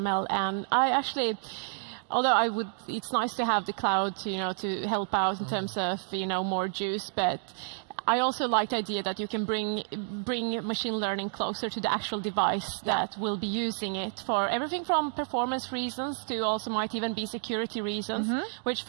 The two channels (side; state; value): left; silent; 55 dB below the other